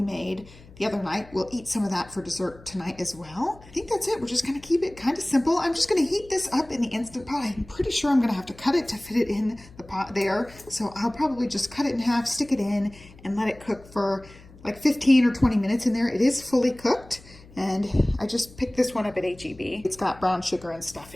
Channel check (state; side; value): noise; left; hum, 22 dB below the sound